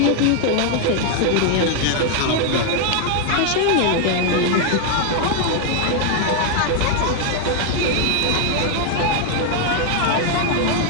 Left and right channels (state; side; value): different; both; correlation 0.00